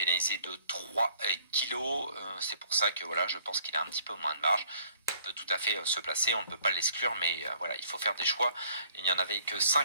de 3 kilos. C'est pour ça que voilà, je pense qu'il a un petit peu moins de marge. Il peut tout à fait se placer. On ne peut pas l'exclure, mais voilà, il faut faire des choix. Il n'y en avait que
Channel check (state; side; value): inverted; both; correlation -0.60